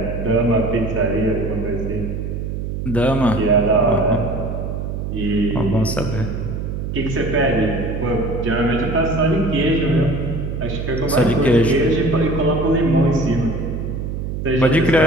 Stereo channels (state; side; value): noise; right; hum, 4 dB below the sound